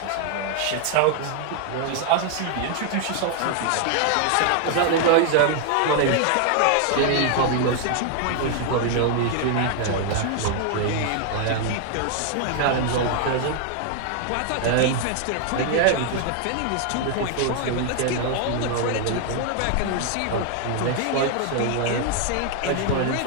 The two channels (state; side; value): different; both; correlation 0.00